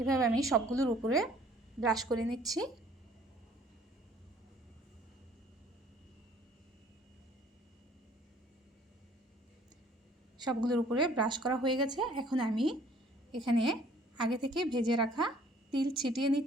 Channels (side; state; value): both; normal; correlation 0.56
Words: এভাবে আমি সবগুলোর উপরে ব্রাশ করে নিচ্ছি। সবগুলোর উপরে ব্রাশ করা হয়ে গেছে। এখন আমি এখানে আগে থেকে ভেজে রাখা তিল ছিটিয়ে